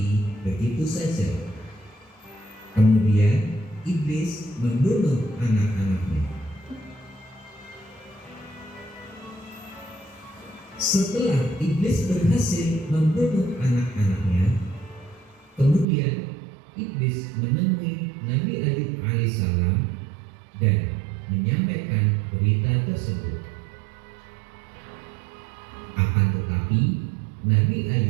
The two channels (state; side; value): drops out; left; at 15.9 s